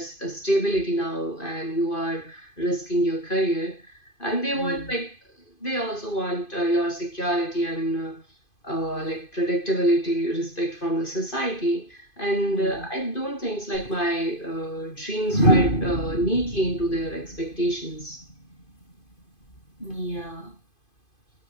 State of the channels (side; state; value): right; late; 2.5 ms